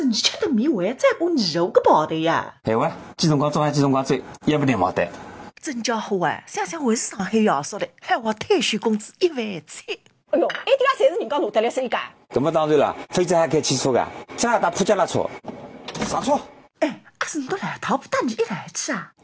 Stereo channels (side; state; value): both; identical; correlation 1.00